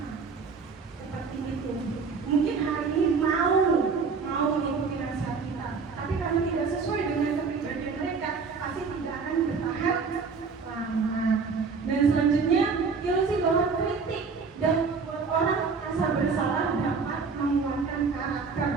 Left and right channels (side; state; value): left; quieter; 5.1 dB